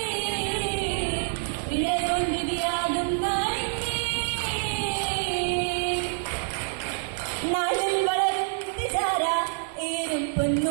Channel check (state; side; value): silent; left; digital silence